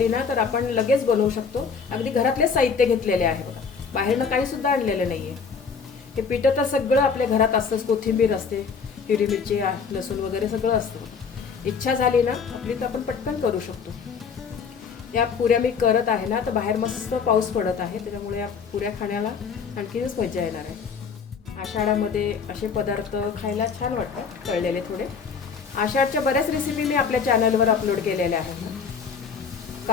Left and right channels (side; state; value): right; quieter; 5.8 dB